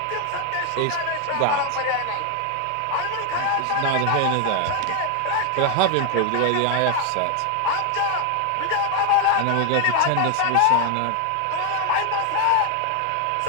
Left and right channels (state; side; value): different; both; correlation 0.00